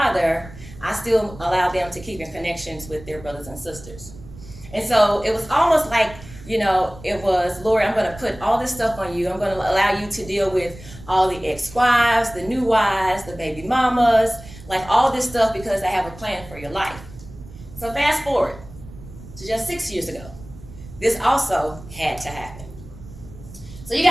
I still allow them to keep in connections with their brothers and sisters. And so it was almost like, it was, Lord, I'm going to put all this stuff on you. I'm going to allow you to deal with all the ex-wives, the new wives, the baby mamas, like all this stuff because I have a plan for your life. So fast forward to just 6 years ago. This also had to happen. So you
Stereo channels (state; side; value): noise; right; rumble, 17 dB below the sound